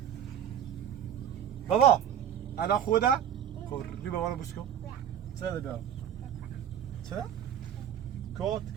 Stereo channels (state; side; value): quieter; left; 9.6 dB